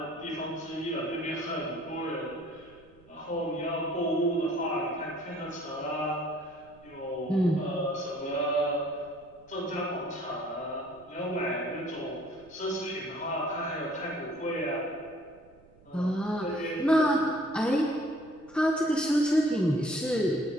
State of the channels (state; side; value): noise; right; rumble, 27 dB below the sound